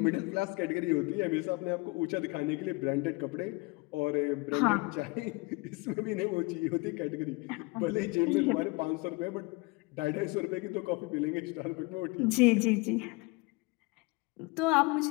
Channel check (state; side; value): quieter; right; 26.2 dB